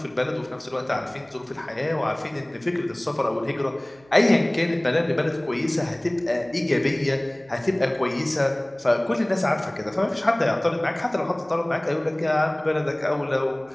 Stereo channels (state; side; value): noise; right; hum, 29 dB below the sound